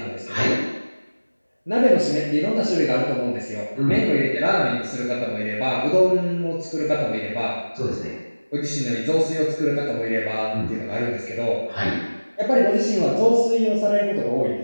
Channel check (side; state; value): both; inverted; correlation -1.00